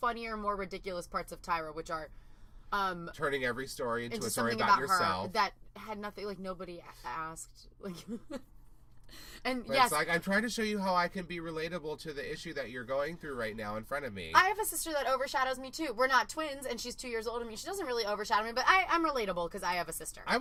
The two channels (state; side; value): identical; both; correlation 1.00